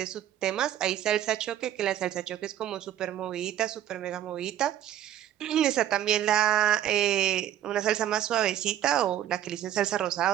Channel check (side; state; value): left; quieter; 11.5 dB